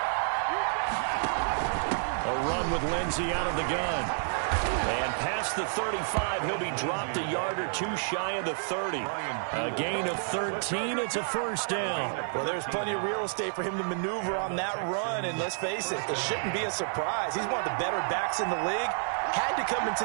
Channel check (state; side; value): silent; left; 58 dB below the other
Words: A run with Lindsay out of the gun. And past the 35, he'll be dropped a yard or 2 shy of the 30. A gain of 13, it's a 1st down. Well, there's plenty of real estate for him to maneuver on that run, and let's face it, it shouldn't be a surprise. He's one of the better backs in the league. Had to come